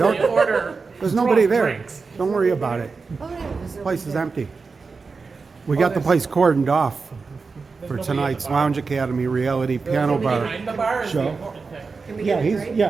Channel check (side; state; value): left; quieter; 4.6 dB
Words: anonymously order There's nobody there. drinks. Don't worry about it. Oh, yeah, there's The no place is there. empty. We got the place cordoned off for nobody tonight's at the bar. Lounge Academy reality piano Nobody bar behind the bar is the show. important thing. Can we Yeah, get a he's drink?